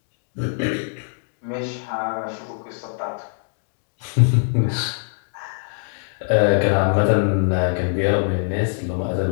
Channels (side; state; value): right; silent; 64 dB below the other